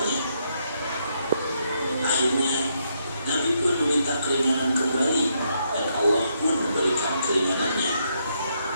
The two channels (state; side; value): inverted; both; correlation -0.77